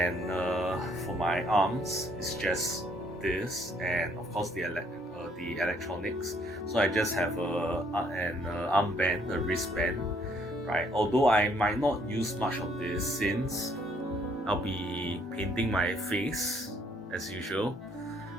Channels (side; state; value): both; normal; correlation 0.66